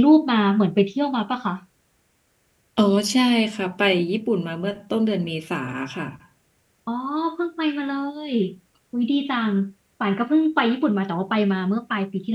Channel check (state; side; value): identical; both; correlation 1.00